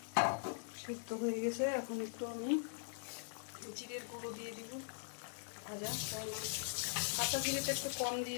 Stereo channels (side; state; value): right; silent; 50 dB below the other